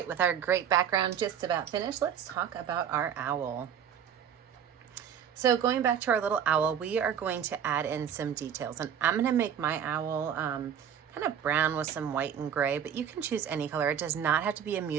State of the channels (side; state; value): left; quieter; 8.6 dB